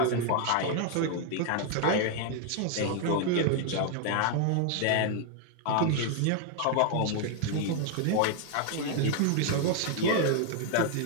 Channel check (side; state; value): both; different; correlation 0.00